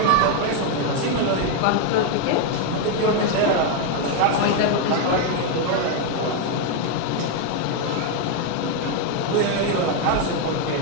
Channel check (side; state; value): both; different; correlation 0.01